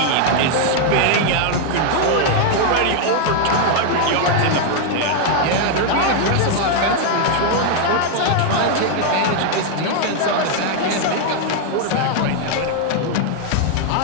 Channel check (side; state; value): both; different; correlation 0.00